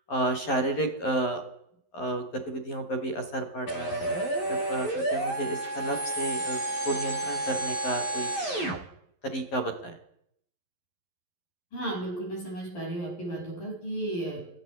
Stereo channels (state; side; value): late; right; 11 ms